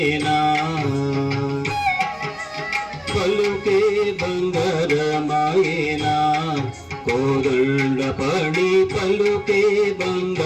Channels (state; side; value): identical; both; correlation 1.00